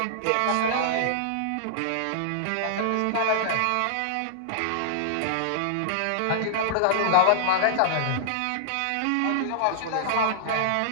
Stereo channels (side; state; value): both; different; correlation -0.01